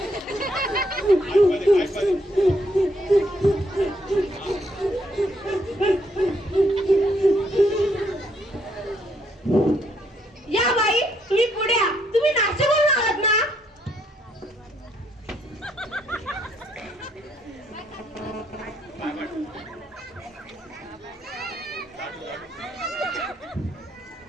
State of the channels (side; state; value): both; normal; correlation 0.72